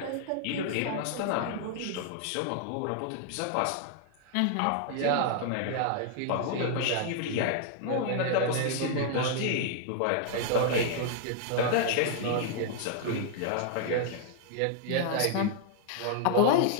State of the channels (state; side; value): different; both; correlation 0.00